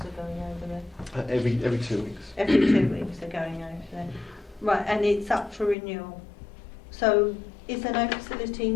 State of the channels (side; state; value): right; drops out; at 5.8 s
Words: are going over there. Every 2 weeks. Every 2 weeks they're going over there. Right, and it's up for renewal. So is there no facility